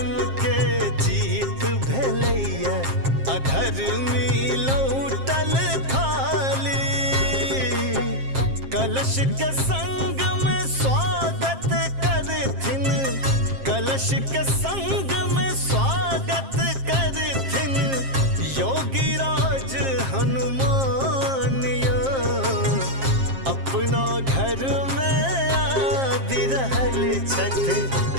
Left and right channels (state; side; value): late; left; 7.5 ms